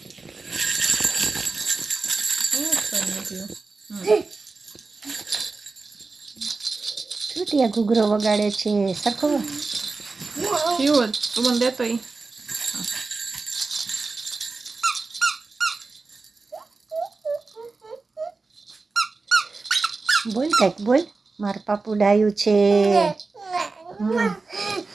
ટીયા ઘૂઘરો વગાડે છે સરખો. તું મને દેતો ઈ. બોલ કંઈક બોલ. મારું પાપુ ડાયું છે.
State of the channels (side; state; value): left; quieter; 3.9 dB